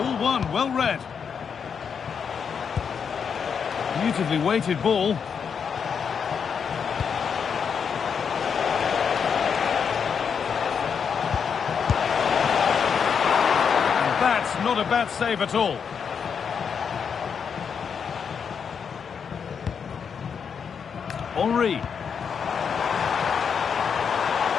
one, well read. Beautifully weighted ball. Not a bad save at all. Henry.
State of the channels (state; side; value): quieter; right; 6.7 dB